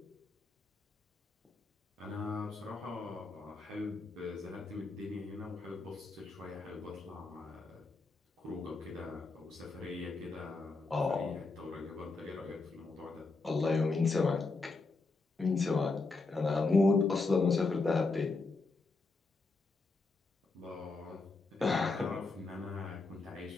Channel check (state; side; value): quieter; right; 3.7 dB